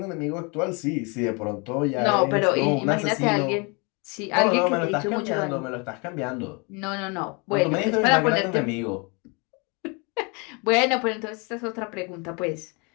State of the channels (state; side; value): quieter; right; 31.1 dB